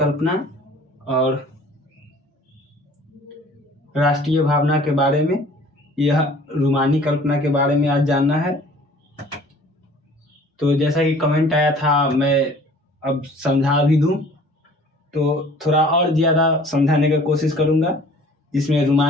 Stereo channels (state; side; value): normal; both; correlation 0.50